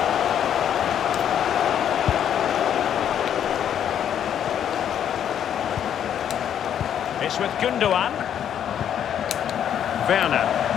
It's with Gundogan. Werner.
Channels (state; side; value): quieter; right; 9.5 dB